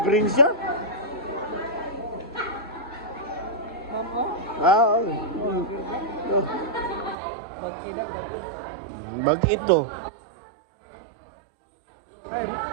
Mama? Ah, oh. Bag ito. Ay,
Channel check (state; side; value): drops out; left; at 7.2 s